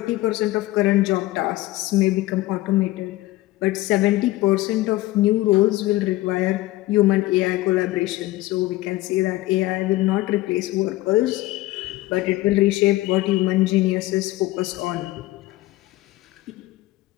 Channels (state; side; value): quieter; right; 17.8 dB